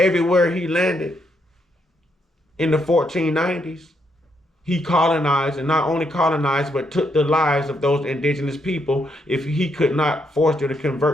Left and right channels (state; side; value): normal; both; correlation 0.77